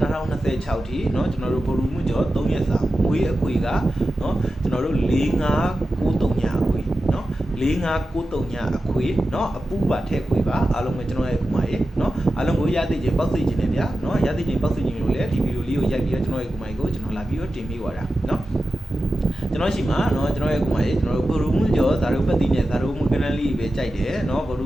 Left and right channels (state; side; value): normal; both; correlation 0.93